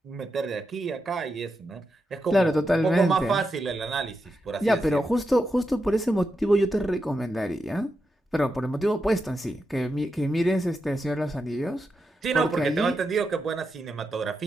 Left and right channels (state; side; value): normal; both; correlation 0.87